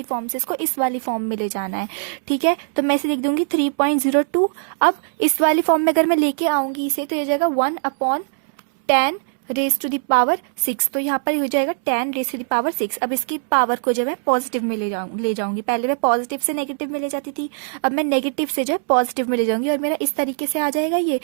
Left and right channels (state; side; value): silent; left; 65 dB below the other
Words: फॉर्म से इसको इस वाली फॉर्म में ले जाना है। ठीक है, तो मैं इसे लिख दूंगी 3.02। अब इस वाली फॉर्म में अगर मैं लेके आऊंगी इसे, तो ये जाएगा 1/10⁻⁶। तो यहाँ पर हो जाएगा 10⁻⁶। अब इसकी पावर को जो है पॉजिटिव में ले जाऊंगी। पहले मैं पॉजिटिव से नेगेटिव में ले जाती थी, अब मैं नेगेटिव से जो है पॉजिटिव में ले जाऊंगी और मेरा इस तरीके से आ जाएगा ये।